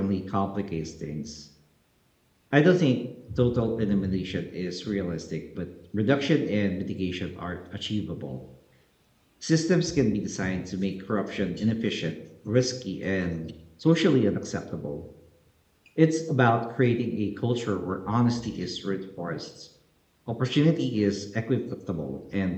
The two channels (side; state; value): both; identical; correlation 1.00